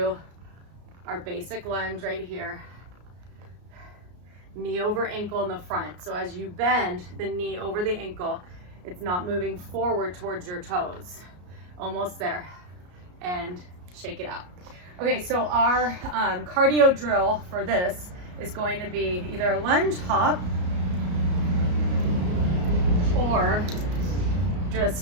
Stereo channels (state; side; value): late; left; 33 ms